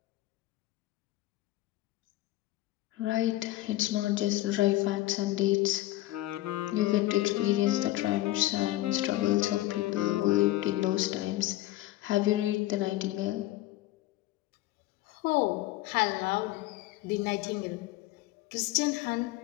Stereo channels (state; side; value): quieter; right; 16.6 dB